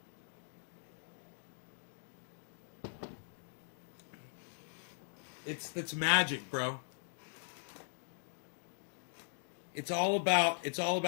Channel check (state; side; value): silent; right; digital silence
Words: It's magic, bro. It's all about